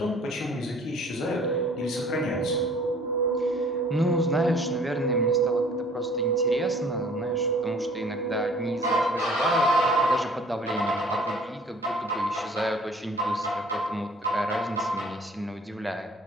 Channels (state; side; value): normal; both; correlation 0.53